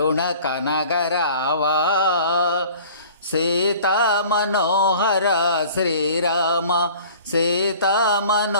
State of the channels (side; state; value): both; inverted; correlation -0.47